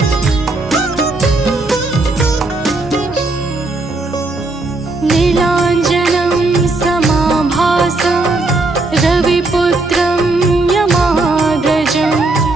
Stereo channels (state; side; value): quieter; left; 3.1 dB